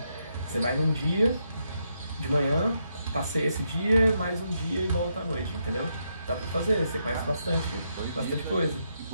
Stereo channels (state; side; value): inverted; both; correlation -0.80